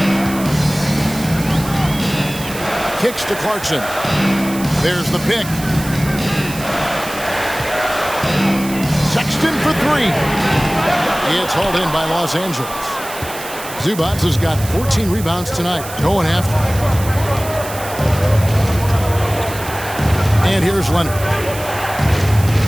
Kicks to Clarkson. There's the pick. Sexton for three. It's hauled in by Los Angeles. Zubac has got 14 rebounds tonight, going after. And here's Leonard.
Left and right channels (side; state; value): right; noise; hiss, 12 dB below the sound